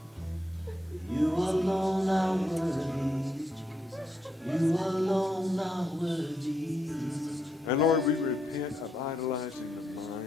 You alone are worthy. You alone are worthy. And Lord, we repent of idolizing the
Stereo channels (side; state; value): both; normal; correlation 0.79